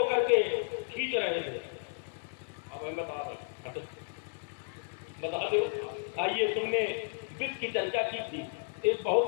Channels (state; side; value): silent; right; 56 dB below the other